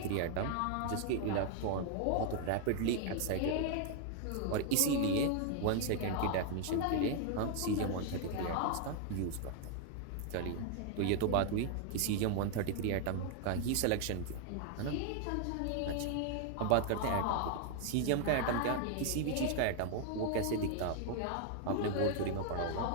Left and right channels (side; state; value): both; different; correlation 0.00